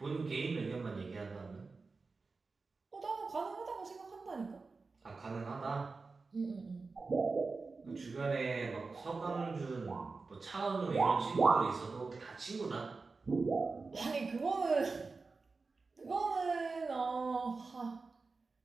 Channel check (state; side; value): quieter; left; 4.1 dB